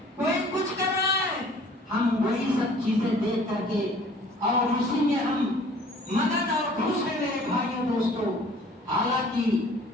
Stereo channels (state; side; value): normal; both; correlation 0.51